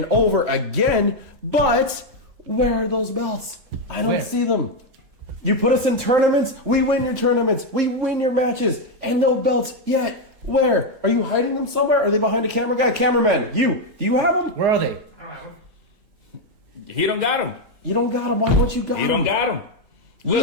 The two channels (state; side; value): late; left; 3.7 ms